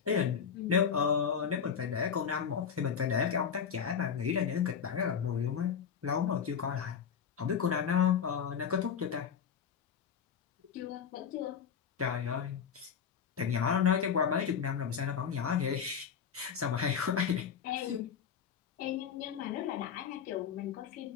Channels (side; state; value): right; quieter; 7.4 dB